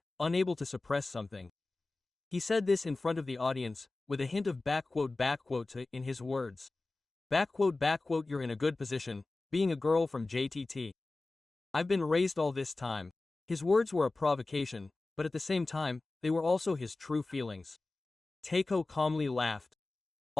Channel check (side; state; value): right; quieter; 3.3 dB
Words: unable to suppress something. He said this in front of the audience, with a hint of backquote to in his words. Backquote, you're in a good position, being a girl from JTT. I've been raised all this time. His words were a provocation, but at the same time, they were also his true feelings. Takeo calmly laughed.